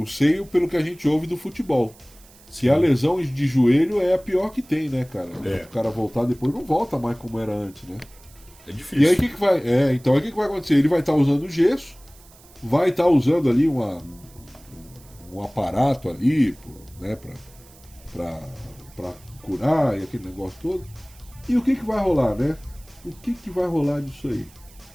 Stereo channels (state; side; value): noise; right; hiss, 25 dB below the sound